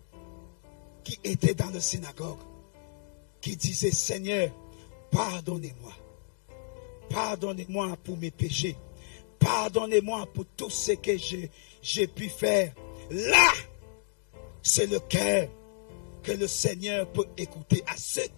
qui étaient dans la synagogue, qui disaient: Seigneur, pardonnez-moi. Pardonnez-moi pour mes péchés. Pardonnez-moi pour tout ce que j'ai pu faire. Là, c'est le cœur que le Seigneur peut écouter. À ce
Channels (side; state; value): right; silent; 57 dB below the other